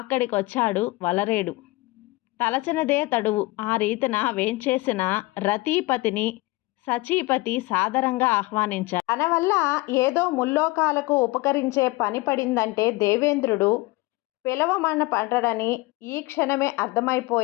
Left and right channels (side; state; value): right; quieter; 21.6 dB